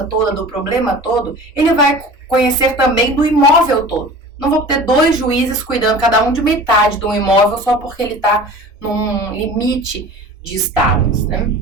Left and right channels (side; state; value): both; normal; correlation 0.39